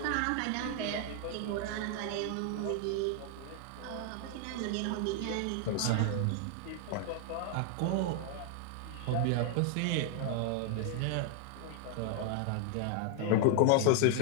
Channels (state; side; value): different; both; correlation 0.00